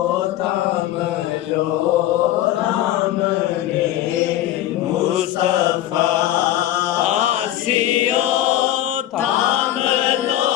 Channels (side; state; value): right; quieter; 13.4 dB